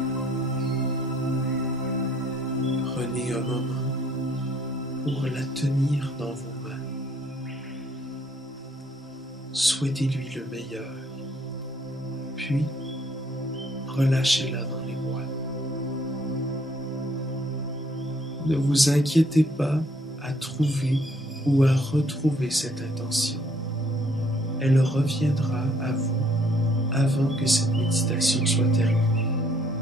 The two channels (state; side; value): normal; both; correlation 0.65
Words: Prenez un moment pour la tenir dans vos mains. Souhaitez-lui le meilleur, puis relâchez-la dans les bois. Ne vous inquiétez pas à trouver ou à retrouver cette intention. Elle reviendra à vous avant que cette méditation soit terminée.